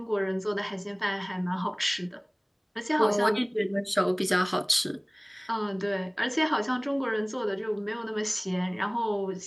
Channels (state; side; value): identical; both; correlation 1.00